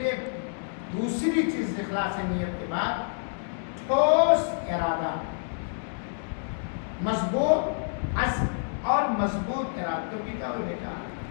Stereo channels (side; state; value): right; silent; digital silence